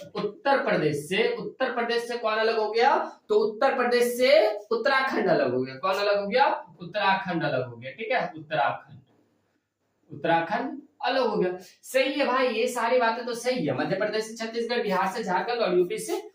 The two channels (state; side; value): identical; both; correlation 1.00